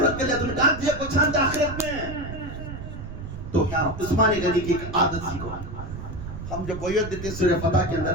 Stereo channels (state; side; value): noise; right; rumble, 9 dB below the sound